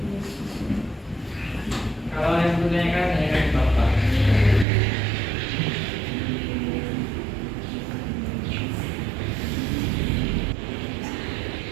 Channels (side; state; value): left; drops out; at 4.7 s